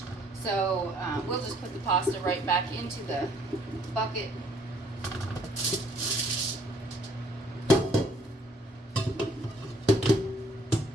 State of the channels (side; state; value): both; normal; correlation 0.63